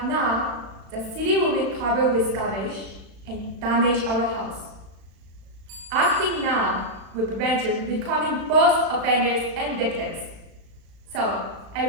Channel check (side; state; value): left; late; 36 ms